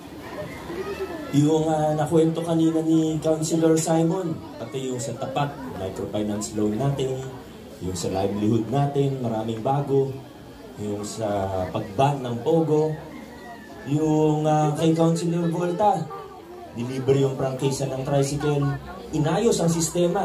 Yung nakwento kanina ni Councilor Simon, pati yung sa tapat, microfinance loan natin, yung sa livelihood natin, maraming bago, yung sa pag-ban ng Pogo, yung kay Councilor Volta, deliver yung prangkisa ng tricycle, inayos ang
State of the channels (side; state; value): both; identical; correlation 1.00